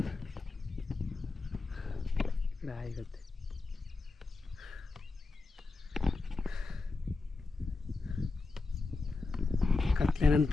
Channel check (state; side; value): quieter; right; 3.7 dB